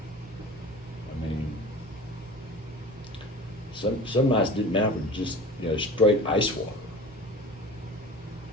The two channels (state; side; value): normal; both; correlation 0.38